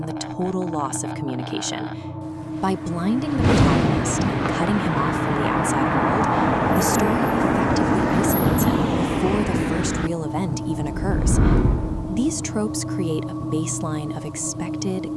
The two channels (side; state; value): both; identical; correlation 1.00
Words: the total loss of communication. By blinding the protagonist and cutting him off from the outside world, the story effectively isolates him before the first real event even occurs. These tropes create a baseline of expected,